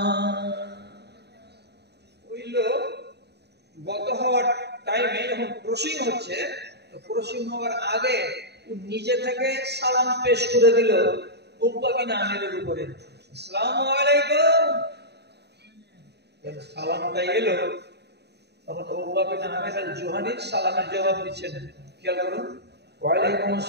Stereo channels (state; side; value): late; left; 0.48 ms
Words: ওই লোক গত হওয়ার টাইমে যখন ক্রসিং হচ্ছে, তো ক্রসিং হওয়ার আগে ও নিজে থেকে সালাম পেশ করে দিল উকবা বিন আমিরের উপরে, আসসালামু আলাইকুম। সালামটা এলো, তখন উকবা বিন আমির আল জুহানি সালামের জবাব দিচ্ছেন। খেয়াল করুন, ওয়ালাইকুম